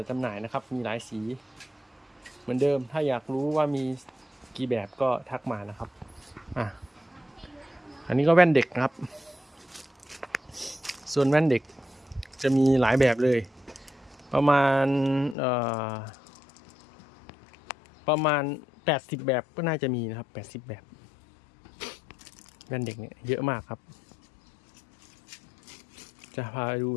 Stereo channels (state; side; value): drops out; right; at 15.4 s